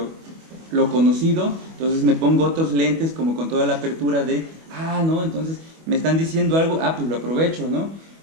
conocido, entonces me pongo otros lentes como con toda la apertura de, ¿no? Entonces me están diciendo algo, pues lo aprovecho, ¿no?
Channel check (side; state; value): left; late; 25 ms